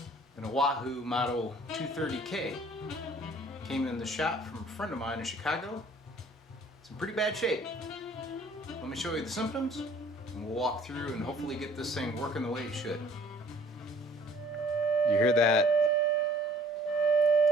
an Oahu Model 230K. Came in the shop from a friend of mine in Chicago. It's in pretty bad shape. Let me show you the symptoms, and we'll walk through and hopefully get this thing working the way it should. You hear that?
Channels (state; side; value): normal; both; correlation 0.54